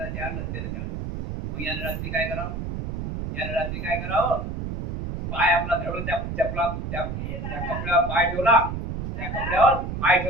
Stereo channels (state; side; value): noise; right; rumble, 5 dB below the sound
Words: ते आणलं, ते झालं. मग याने रात्री काय करावं, पाय आपला धरून त्या कपड्यावर पाय ठेवला, त्या कपड्यावर पाय